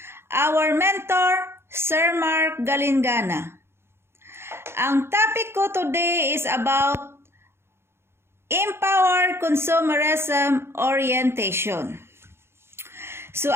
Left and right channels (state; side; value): late; left; 0.12 ms